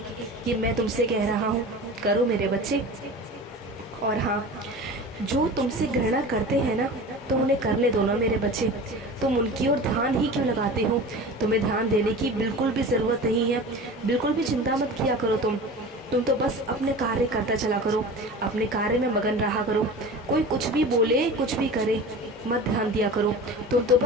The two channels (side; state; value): both; normal; correlation 0.35